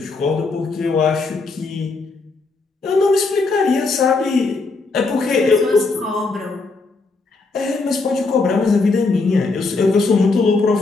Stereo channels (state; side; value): quieter; right; 3.8 dB